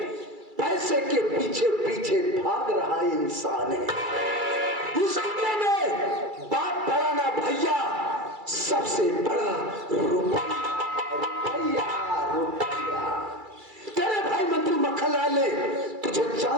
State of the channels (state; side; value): late; left; 2.3 ms